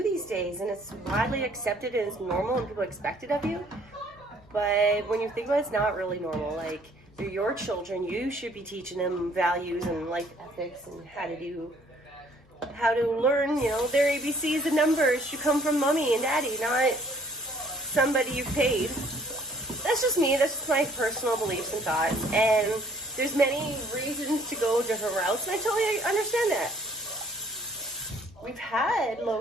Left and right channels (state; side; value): normal; both; correlation 0.60